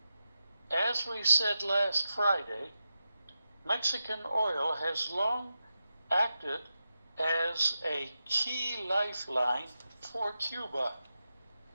As we said last Friday, Mexican oil has long acted as a key lifeline for Cuba.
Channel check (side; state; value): both; inverted; correlation -0.90